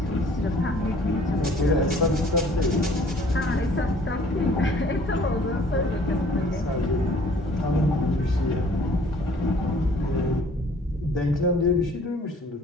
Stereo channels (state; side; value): normal; both; correlation 0.55